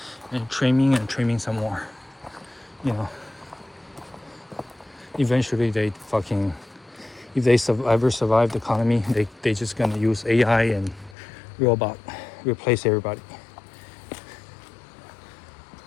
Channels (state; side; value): drops out; right; at 11.2 s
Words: and trimming some more. You know, eventually they fucking, if they ever survive the economy, they just gonna use AI and robot replace everybody.